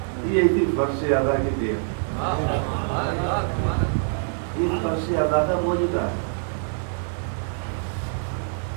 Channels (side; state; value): left; silent; digital silence